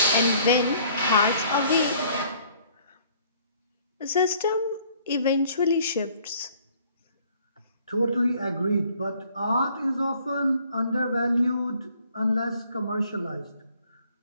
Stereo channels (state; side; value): inverted; both; correlation -0.59